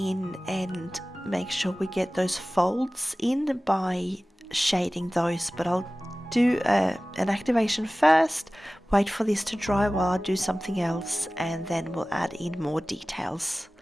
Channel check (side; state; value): both; normal; correlation 0.97